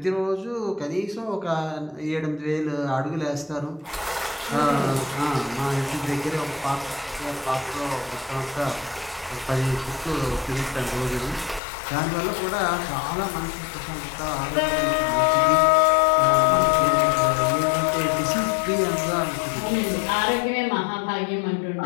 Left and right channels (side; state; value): right; drops out; at 11.6 s